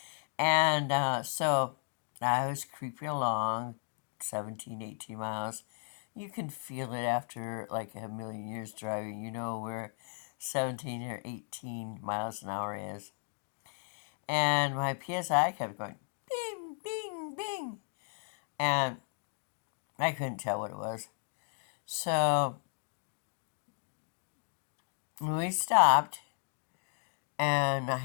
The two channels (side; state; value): right; silent; digital silence